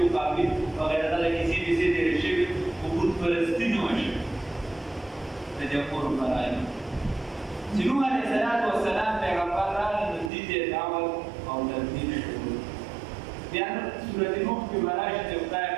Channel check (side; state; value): left; drops out; at 10.3 s